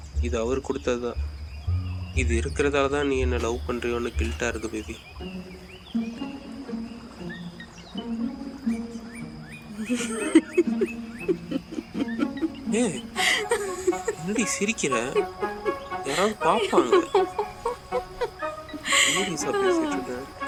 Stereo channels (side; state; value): both; identical; correlation 1.00